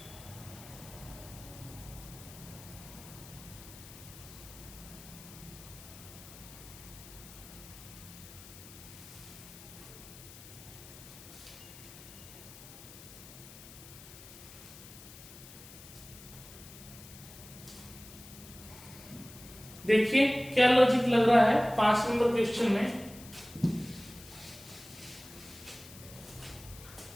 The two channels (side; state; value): left; noise; hiss, 16 dB below the sound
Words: देखिए क्या लॉजिक लग रहा है 5 नंबर क्वेश्चन में।